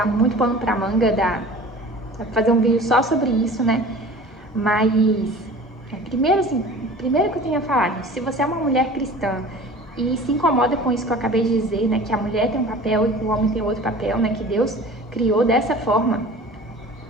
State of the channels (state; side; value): normal; both; correlation 0.42